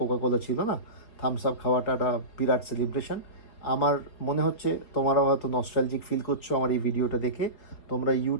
ছিল না, থামস আপ খাওয়াটা একটা বিরাট সেলিব্রেশন। আমার মনে হচ্ছে তোমরাও হয়তো নস্টালজিক ফিল করছো আমার এই ভিডিওটা দেখে। তোমরা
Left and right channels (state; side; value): late; right; 4.5 ms